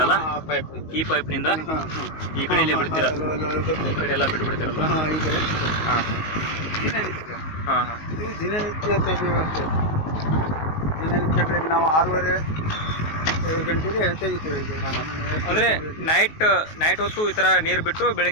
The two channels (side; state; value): right; late; 19 ms